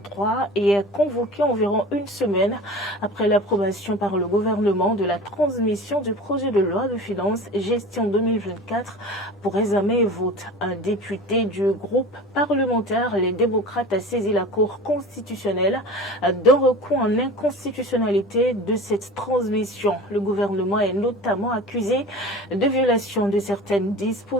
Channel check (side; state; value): both; normal; correlation 0.37